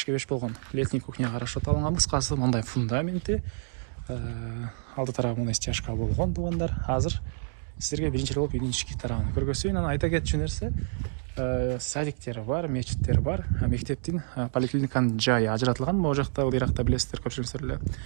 болгон летний кухняга расчет алынган. Кыскасы мындай фундаменти, алды тарабы мындай стяжка болгон туугандар. Азыр силерге биринчи болуп үйдүн ички тарабын көргөзөйүн. Анан айта кетчү нерсе, садиктери бар, мечиттер бар, мектептин, поликлиниканын жайы ажыратылган. Могу жакта, ыйракта билесиздер, көпчүлүгүңүздөр эле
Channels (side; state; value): left; silent; 59 dB below the other